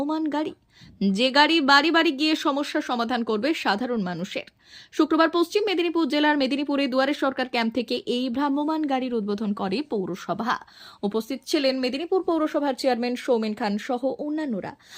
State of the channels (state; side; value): identical; both; correlation 1.00